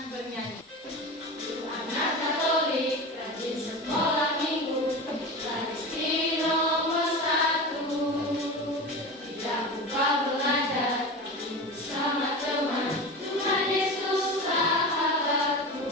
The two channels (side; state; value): both; normal; correlation 0.28